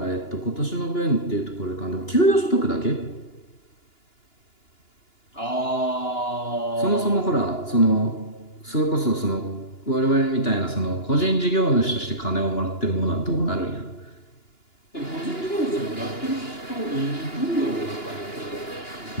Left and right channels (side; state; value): right; late; 2.9 ms